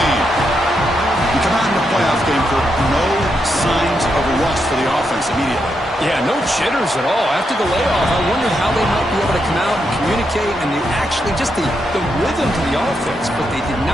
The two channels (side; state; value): both; normal; correlation 0.82